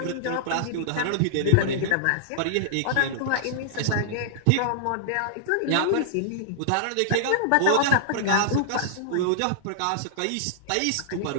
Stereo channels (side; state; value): both; different; correlation -0.01